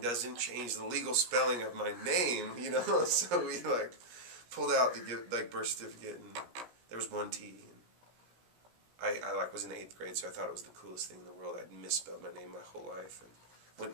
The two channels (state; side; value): late; left; 17 ms